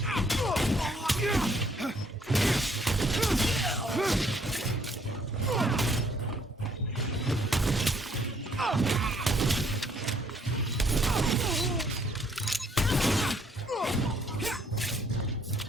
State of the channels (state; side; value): normal; both; correlation 0.66